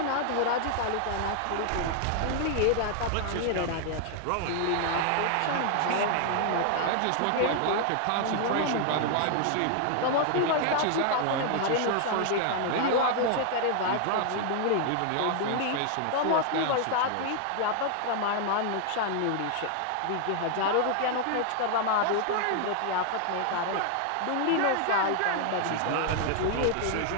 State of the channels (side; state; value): both; different; correlation 0.00